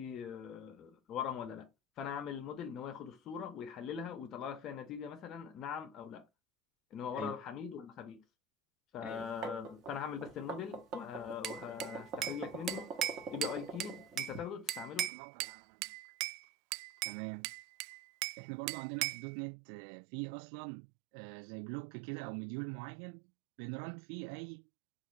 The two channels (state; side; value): drops out; left; at 15.1 s